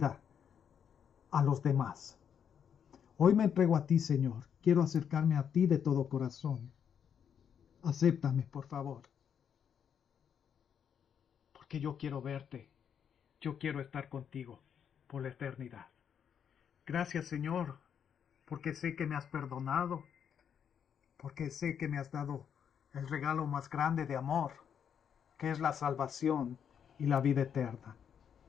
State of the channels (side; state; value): right; quieter; 8.0 dB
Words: a los demás. Hoy me entrego a ti, Señor. Quiero acercarme a ti de todo corazón. Acéptame, por favor. Porque yo quiero verte. Yo quiero estar contigo por la eternidad. Gracias, Señor, porque sé que me has perdonado. Porque sé que me has dado el regalo más grande de amor, que es la salvación y la vida eterna.